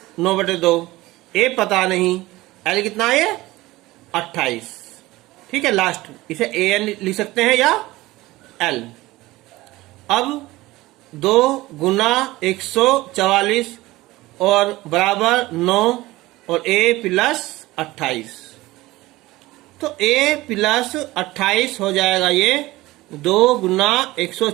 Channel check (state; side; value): quieter; left; 18.8 dB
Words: 9/2, A पता नहीं, L कितना है 28, ठीक है। लास्ट इसे AN लिख सकते हैं या L, अब 2 गुना 144 और बराबर 9 और a प्लस 28, तो a प्लस 28 हो जाएगा ये 2 गुना